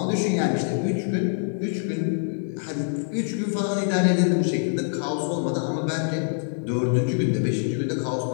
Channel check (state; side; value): silent; right; digital silence